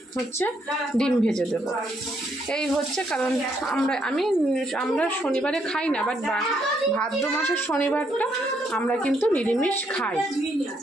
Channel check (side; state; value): both; normal; correlation 0.74